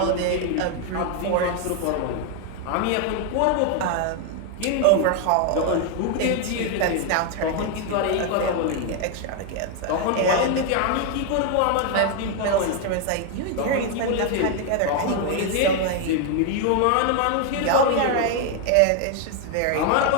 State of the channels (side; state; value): both; different; correlation 0.01